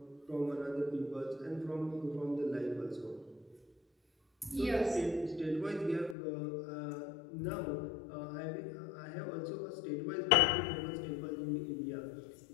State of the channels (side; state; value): right; drops out; at 6.2 s